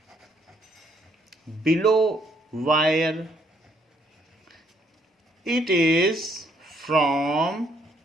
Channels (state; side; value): normal; both; correlation 0.68